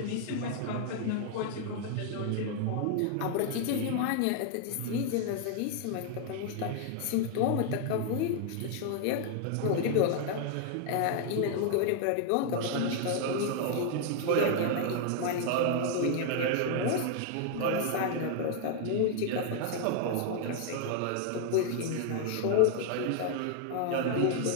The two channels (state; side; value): different; both; correlation 0.00